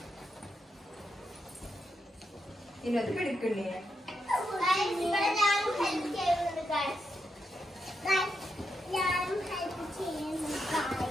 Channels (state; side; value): normal; both; correlation 0.84